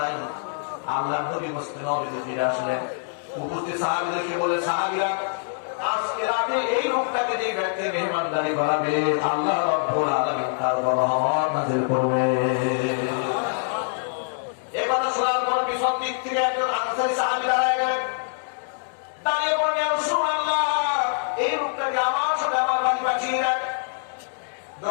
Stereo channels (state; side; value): silent; right; digital silence